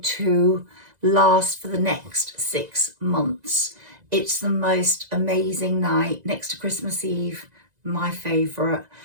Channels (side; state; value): left; late; 2.0 ms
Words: to last for the next 6 months. It's the most amazing night next to Christmas Eve, my favourite.